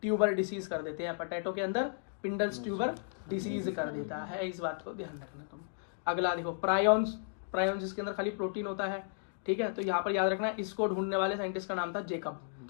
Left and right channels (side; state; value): right; silent; digital silence